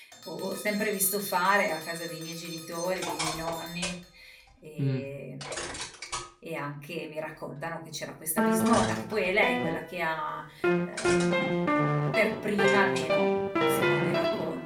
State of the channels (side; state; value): both; identical; correlation 1.00